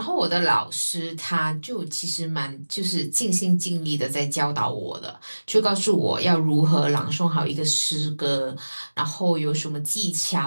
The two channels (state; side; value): inverted; both; correlation -1.00